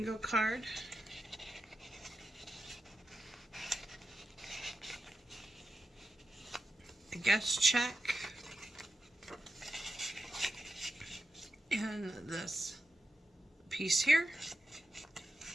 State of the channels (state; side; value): normal; both; correlation 0.89